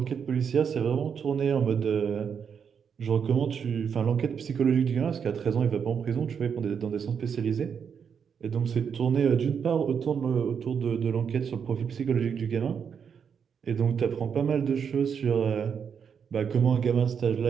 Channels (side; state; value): left; quieter; 7.0 dB